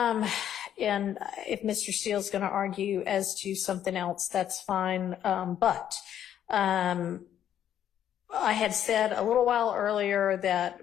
if Mr. Steele's going to argue as to something else, that's fine. But I had said a little while earlier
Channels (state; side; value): quieter; right; 10.3 dB